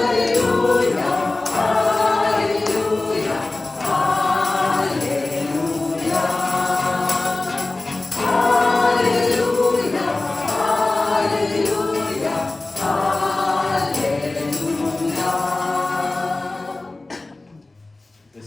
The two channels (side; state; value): right; quieter; 3.0 dB